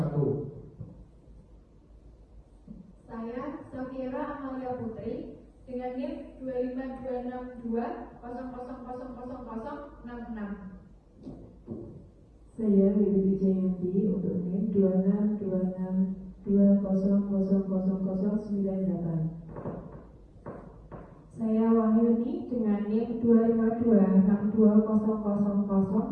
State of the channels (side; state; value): both; identical; correlation 1.00